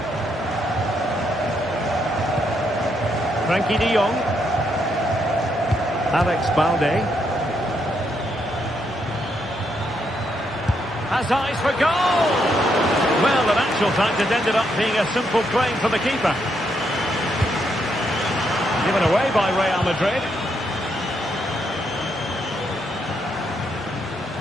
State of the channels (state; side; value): normal; both; correlation 0.77